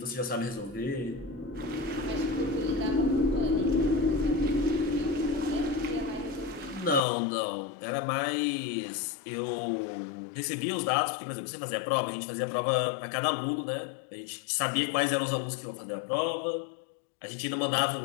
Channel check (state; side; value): drops out; right; at 7.0 s